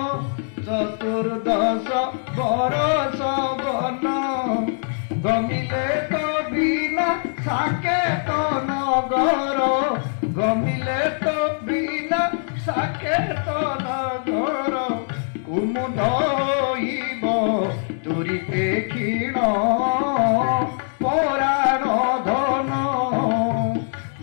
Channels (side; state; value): right; silent; digital silence